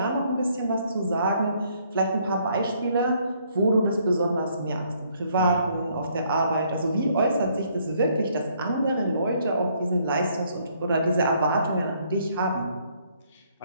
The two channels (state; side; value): inverted; both; correlation -0.67